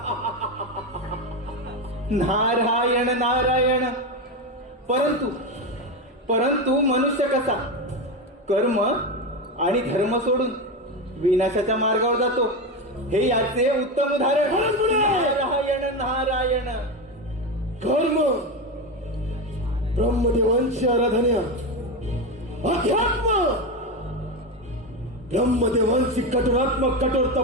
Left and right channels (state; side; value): normal; both; correlation 0.15